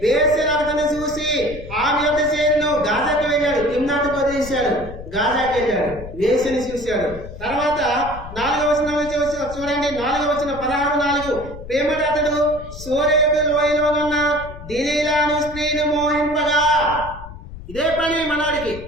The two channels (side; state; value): left; noise; rumble, 13 dB below the sound